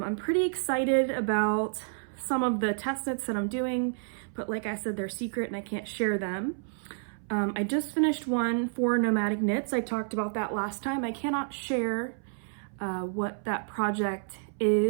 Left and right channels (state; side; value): silent; left; 58 dB below the other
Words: pretty excited about some of the test knits that I'm doing, but like I said, they're secret and I can't share them. I just finished one for Nomadic Knits. I talked about that last time. I cannot share what that project